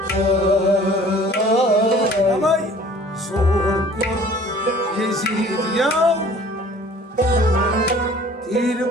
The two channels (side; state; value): both; normal; correlation 0.50